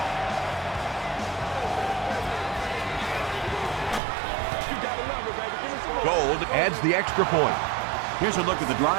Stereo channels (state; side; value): drops out; left; at 4.0 s